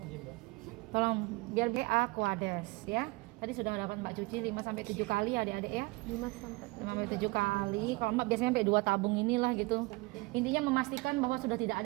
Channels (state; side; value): quieter; left; 24.3 dB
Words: biar Aquades ya. Tadi sudah dapat mbak cuci 5-7 kali adik-adik ya, 5-7 kali. Kalau mbak biasanya sampai 2 tabung inilah gitu. Intinya memastikan bahwa sudah